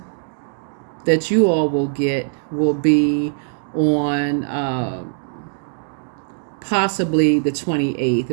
that you all will get will be on possibly the 28th.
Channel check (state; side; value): silent; left; digital silence